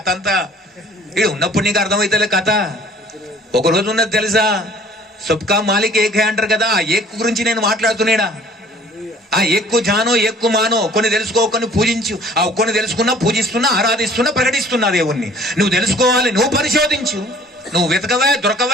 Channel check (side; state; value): both; normal; correlation 0.54